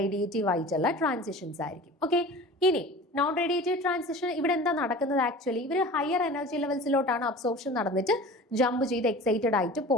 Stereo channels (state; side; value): normal; both; correlation 0.39